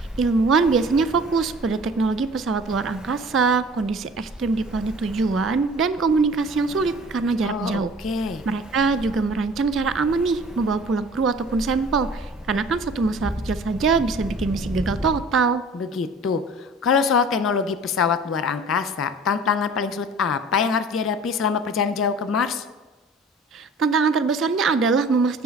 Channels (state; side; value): normal; both; correlation 0.46